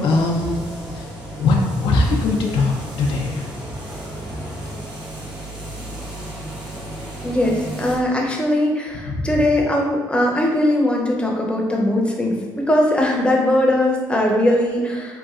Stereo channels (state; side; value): normal; both; correlation 0.76